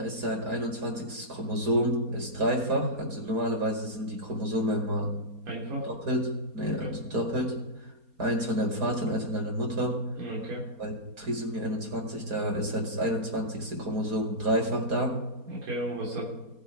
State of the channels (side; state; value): left; late; 4.3 ms